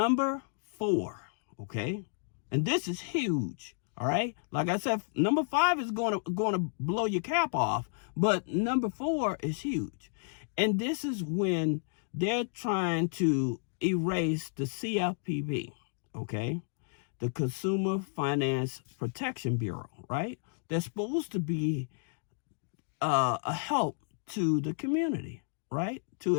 4, okay, and this is huge. All right, like I said, number 5 is going to blow your cap off, but number 4 is huge. And this is when they're trying to erase the CFPB, okay, the Consumer Finance Protection Bureau, right? They're supposed to be a help to the community, right? To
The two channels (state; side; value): silent; right; digital silence